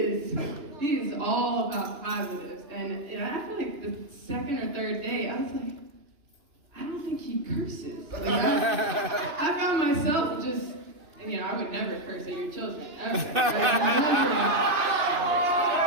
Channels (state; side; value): late; left; 2.9 ms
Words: all about positives. And I feel like the second or third day, I was like, I don't think he curses. Like, I found myself just, and I would never curse at your children, ever.